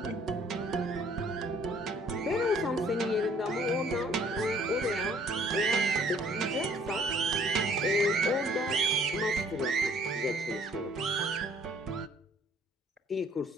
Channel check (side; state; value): both; normal; correlation 0.59